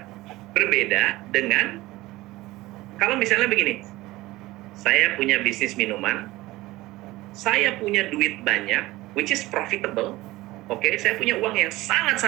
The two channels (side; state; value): left; quieter; 18.6 dB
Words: berbeda dengan kalau misalnya begini, saya punya bisnis minuman, saya punya duit banyak, which is profitable, oke, saya punya uang yang